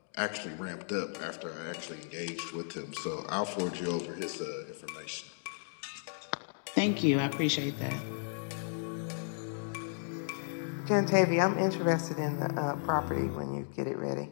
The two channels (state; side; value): silent; right; digital silence